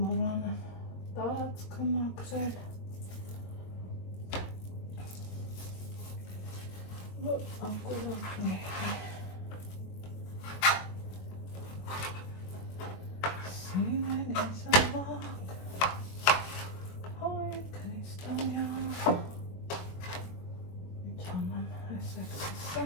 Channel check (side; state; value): right; late; 22 ms